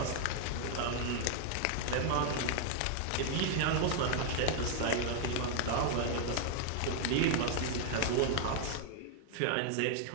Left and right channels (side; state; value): both; different; correlation 0.00